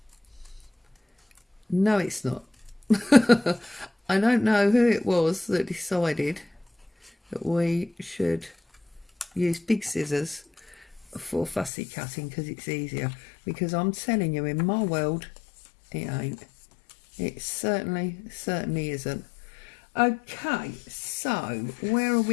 no it's not. I don't know who it was that decided that we should use big scissors for fussy cutting because it's easier, because I'm telling you, in my world it ain't. It certainly isn't. Okay, so where are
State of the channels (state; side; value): drops out; right; at 11.7 s